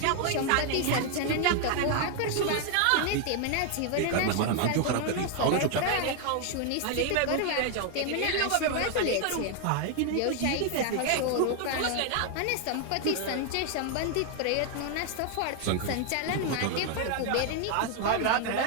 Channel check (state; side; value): different; both; correlation 0.00